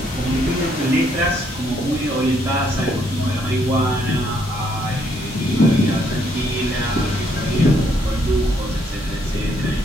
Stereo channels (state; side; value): normal; both; correlation 0.71